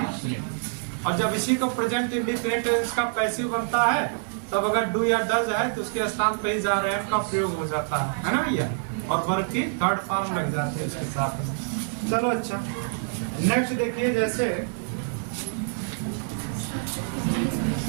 और जब इसी को प्रेजेंट इंडिफिनिट इसका पैसिव बनता है, तब अगर डू या डज है तो उसके स्थान पे ही जा रहे हैं का प्रयोग हो जाता है ना भैया, और वर्ब की थर्ड फॉर्म लग जाती है उसके साथ। चलो अच्छा, नेक्स्ट देखिए, जैसे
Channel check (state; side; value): silent; left; digital silence